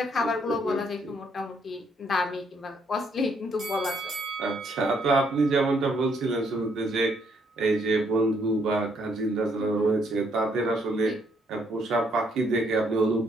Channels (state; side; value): normal; both; correlation 0.70